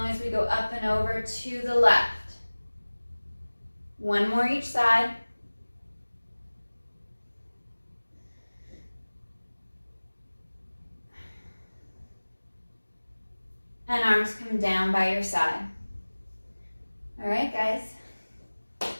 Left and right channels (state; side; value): inverted; both; correlation -1.00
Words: as we go up and over to the left. One more each side. And arms come down by your side. All right, guys.